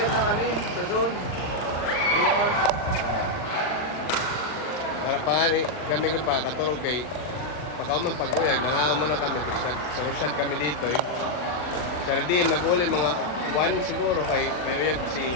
na kami sa zone. Para pa kami pa katurog kay pagkauman pag-uyag, nangaw muna kami, tapos nag-shot kami dito eh. Sardim, nag-uli mga 1 siguro kay may uyag si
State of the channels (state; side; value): late; right; 40 ms